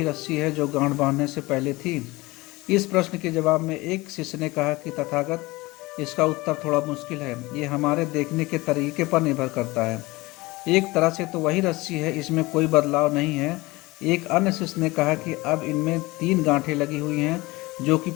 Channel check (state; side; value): quieter; right; 21.6 dB